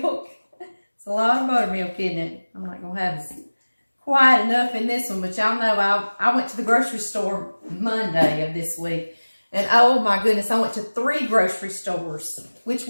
It's a lot of buttermilk, isn't it? I'm not going to have quite enough in this one, but y'all know I went to the grocery store Monday of this week, and oh my goodness, I went to 3 grocery stores which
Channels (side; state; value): both; inverted; correlation -1.00